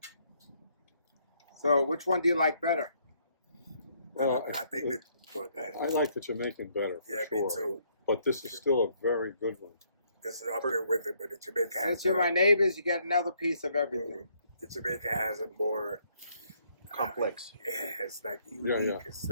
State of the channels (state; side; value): inverted; both; correlation -0.69